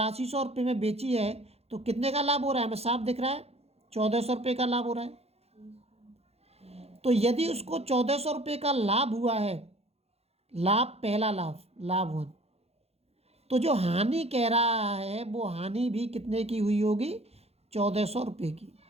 रुपये में बेची है, तो कितने का लाभ हो रहा है? हमें साफ दिख रहा है 1400 रुपये का लाभ हो रहा है। तो यदि उसको 1400 रुपये का लाभ हुआ है, लाभ पहला लाभ, लाभ 1, तो जो हानि कह रहा है वो हानि भी कितने की हुई होगी? 1400 रुपये की।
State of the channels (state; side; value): late; left; 0.30 ms